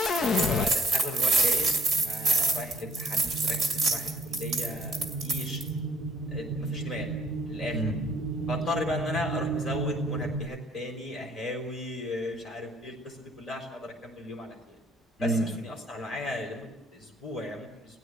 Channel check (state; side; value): normal; both; correlation 0.58